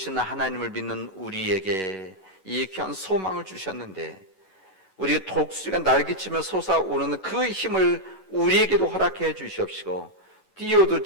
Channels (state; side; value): late; right; 9.4 ms